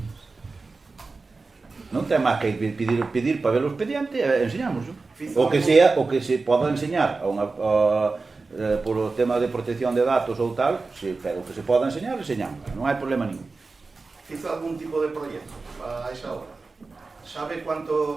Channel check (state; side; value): quieter; left; 3.9 dB